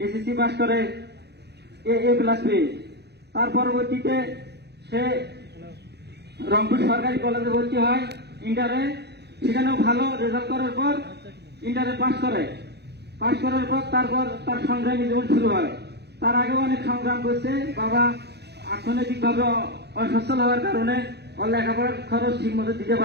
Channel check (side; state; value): left; late; 0.48 ms